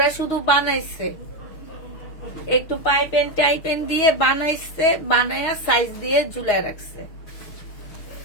শুধু বানাইছে, একটু পাইপেন টাইপেন দিয়ে বানাইছে, বানায়া সাইজ দিয়ে ঝুলায় রাখছে।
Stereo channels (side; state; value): right; late; 6.3 ms